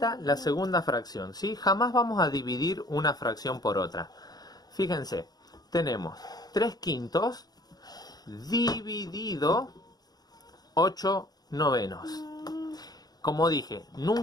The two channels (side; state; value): right; late; 0.19 ms